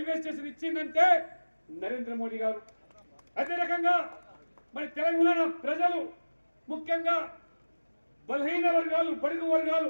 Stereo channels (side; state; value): both; inverted; correlation -1.00